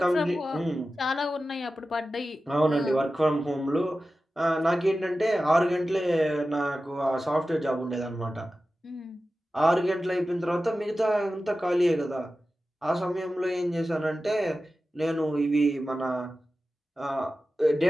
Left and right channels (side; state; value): both; normal; correlation 0.94